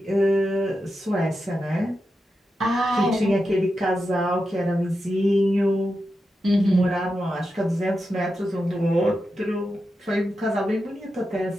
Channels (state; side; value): normal; both; correlation 0.89